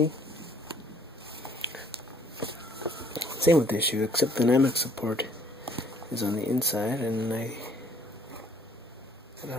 Same with this shoe, except the dynamic support is on the inside, and I don't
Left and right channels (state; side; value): normal; both; correlation 0.61